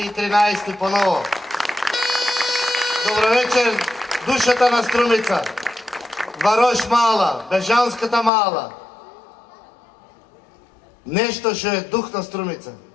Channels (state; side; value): drops out; right; at 8.3 s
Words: 13 по ново. Добро вечер, душата на Струмица. Варош мала, Бежанската мала. Нешто што е дух на Струмица.